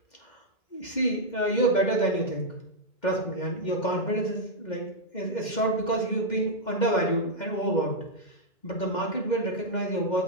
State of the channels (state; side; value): late; right; 2.1 ms